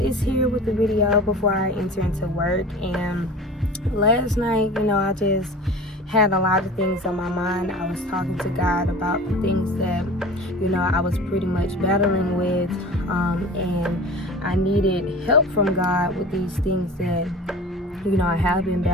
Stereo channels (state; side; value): normal; both; correlation 0.39